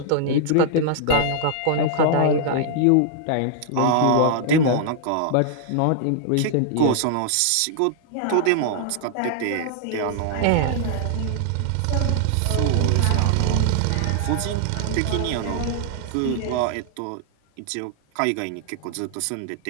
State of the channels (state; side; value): different; both; correlation -0.01